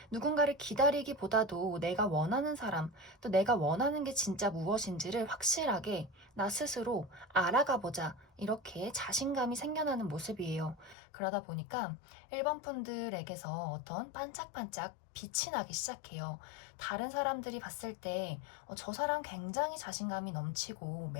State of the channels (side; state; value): right; drops out; at 11.0 s